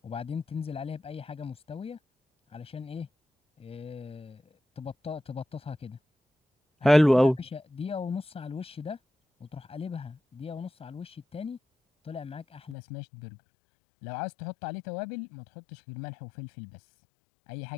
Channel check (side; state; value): right; drops out; at 12.8 s